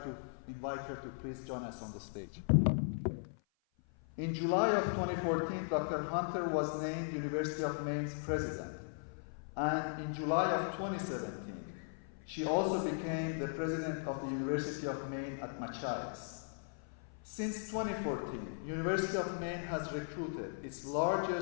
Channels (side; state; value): right; silent; 53 dB below the other